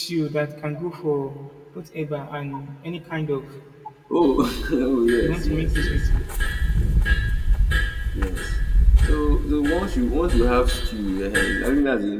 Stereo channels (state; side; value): identical; both; correlation 1.00